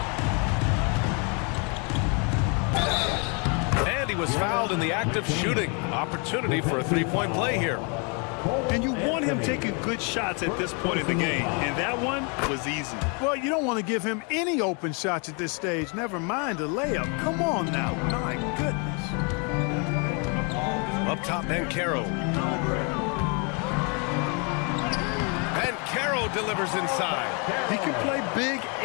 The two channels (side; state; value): right; quieter; 35.0 dB